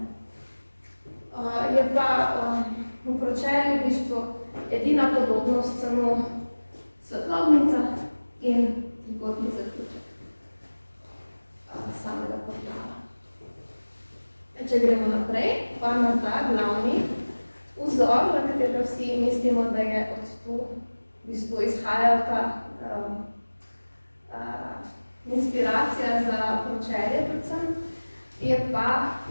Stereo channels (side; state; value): both; inverted; correlation -1.00